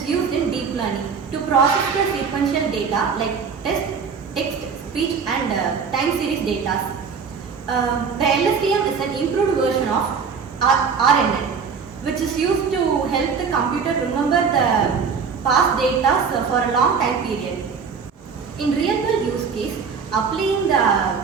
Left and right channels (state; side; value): quieter; left; 5.9 dB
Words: used in deep learning to process the sequential data like text, speech and time series data. The LSTM is an improved version of RNN which is used to help the computer remember the past data for a long time period. In real world use case, applying